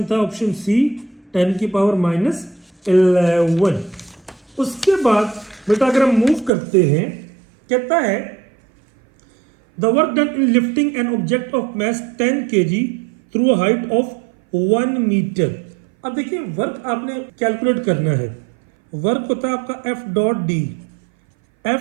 था ऑप्शन सी 10 की पावर -11। उसके बाद बेटा अगर हम मूव करते हैं, कहता है the work done in lifting an object of mass 10 kg थ्रू अ हाइट ऑफ 1 मीटर। अब देखिए वर्क आपने कैलकुलेट करना है, वर्क होता है आपका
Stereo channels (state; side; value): drops out; left; at 6.5 s